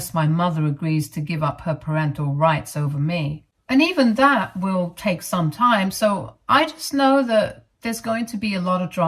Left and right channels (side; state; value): both; identical; correlation 1.00